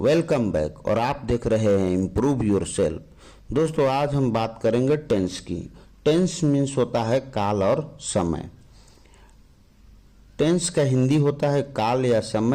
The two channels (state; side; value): identical; both; correlation 1.00